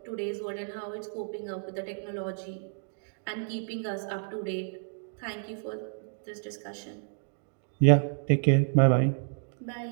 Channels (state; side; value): silent; left; digital silence